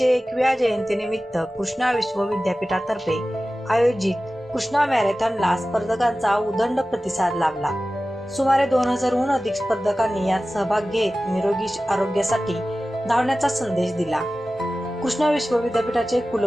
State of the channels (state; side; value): normal; both; correlation 0.96